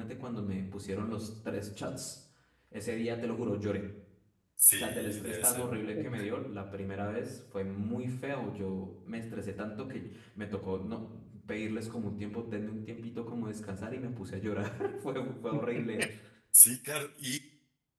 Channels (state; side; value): identical; both; correlation 1.00